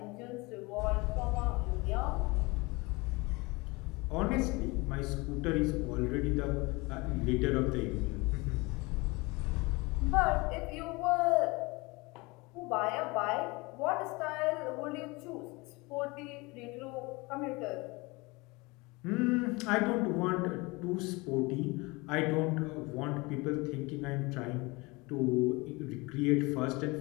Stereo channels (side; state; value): right; quieter; 25.0 dB